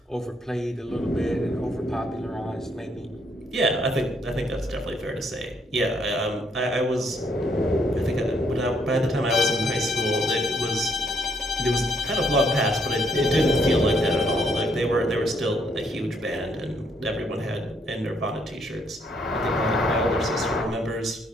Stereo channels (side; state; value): both; normal; correlation 0.71